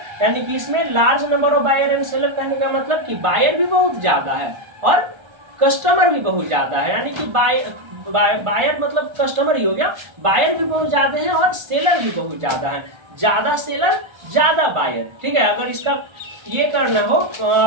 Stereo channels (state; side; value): late; left; 1.3 ms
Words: यानी कि इसमें large number of buyer and seller कहने का मतलब कि बायर भी बहुत ज्यादा है और कस्टमर भी बहुत ज्यादा है। यानी कि बायर मतलब कस्टमर ही हो गया, बायर भी बहुत ज्यादा है और सेलर भी बहुत ज्यादा है। ज्यादा सेलर ज्यादा बायर। ठीक है, अगर इसका ये करना हो,